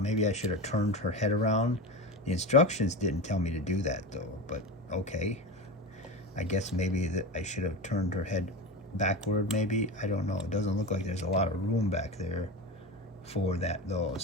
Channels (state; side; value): normal; both; correlation 0.24